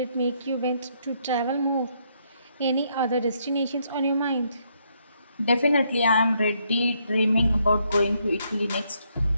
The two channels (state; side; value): inverted; both; correlation -0.74